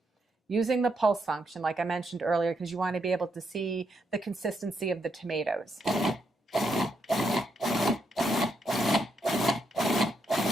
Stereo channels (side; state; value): both; normal; correlation 0.79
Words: using the pulse function, like I mentioned earlier, because you want to be able to see the consistency of the tomatoes.